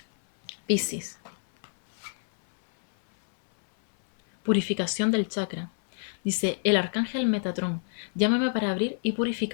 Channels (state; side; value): silent; right; 60 dB below the other